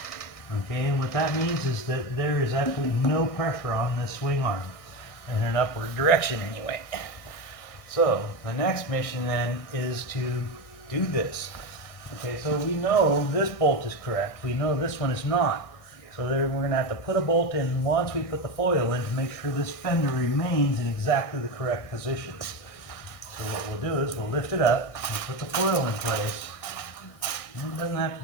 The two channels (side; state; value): right; late; 1.6 ms